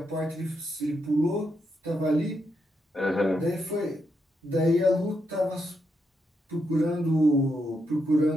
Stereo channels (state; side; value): normal; both; correlation 0.81